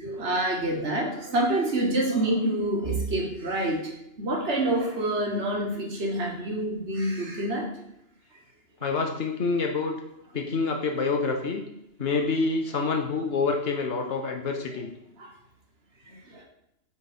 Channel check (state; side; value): late; left; 2.9 ms